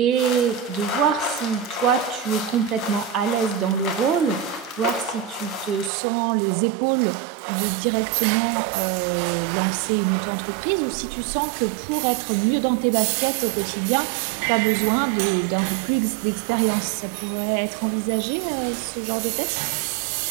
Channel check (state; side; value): drops out; left; at 5.9 s